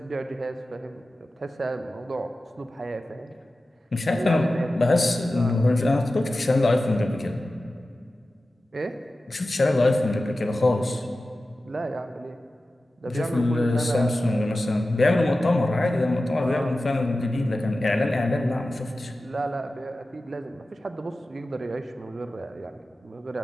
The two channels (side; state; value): both; normal; correlation 0.94